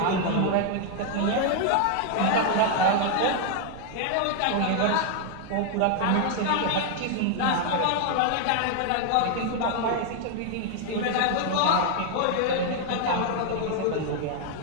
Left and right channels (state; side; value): different; both; correlation 0.00